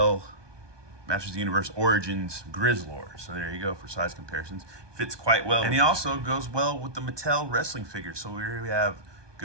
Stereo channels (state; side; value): late; left; 1.2 ms